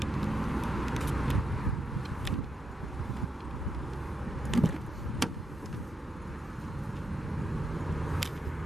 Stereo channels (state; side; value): normal; both; correlation 0.83